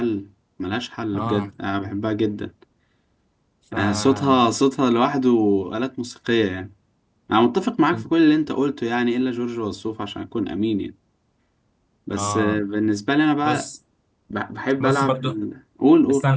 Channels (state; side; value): identical; both; correlation 1.00